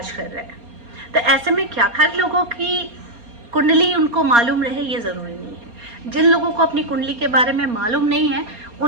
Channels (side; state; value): left; late; 4.3 ms